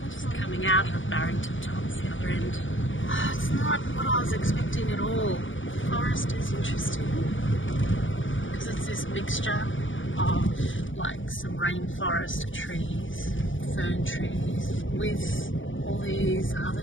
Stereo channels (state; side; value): late; right; 0.56 ms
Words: just coming out of Barrington tops, the other end. Oh, it's not what I was expecting at all. Forest is interesting because it's this mixture of like some rainforest trees, fern trees, with all these other